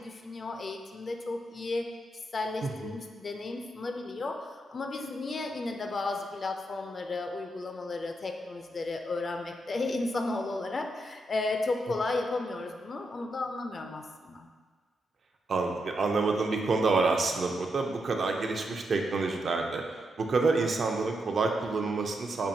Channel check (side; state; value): both; normal; correlation 0.83